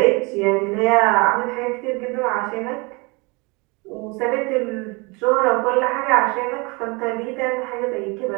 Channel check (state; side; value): quieter; left; 28.1 dB